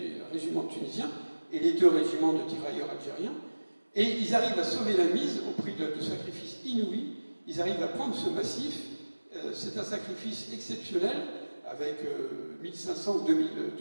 régiment tunisien et les 2 régiments de tirailleurs algériens. Et ils arrivent à sauver la mise au prix de sacrifices inouïs. Ils arrivent à prendre ce massif. C'est un sacrifice exceptionnel, avec 1500 ou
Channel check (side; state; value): both; inverted; correlation -1.00